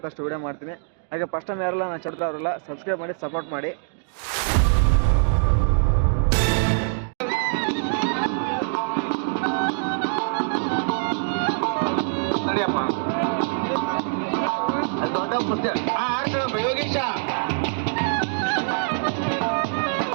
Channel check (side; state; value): left; silent; 63 dB below the other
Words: ಅಷ್ಟು ವಿಡಿಯೋ ಮಾಡ್ತೀನಿ. ಹಾಗೆ ಫಸ್ಟ್ ಟೈಮ್ ಯಾರಲ್ಲ ನಾನು ಚಡ್ದವ್ರಲ್ಲ ಸಬ್ಸ್ಕ್ರೈಬ್ ಮಾಡಿ ಸಪೋರ್ಟ್ ಮಾಡಿ. ಯೋಗೇಶ